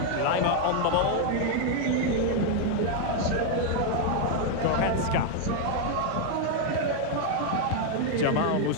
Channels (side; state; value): both; different; correlation 0.00